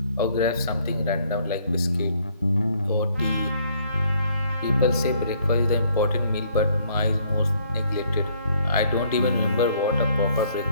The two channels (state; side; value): inverted; both; correlation -0.64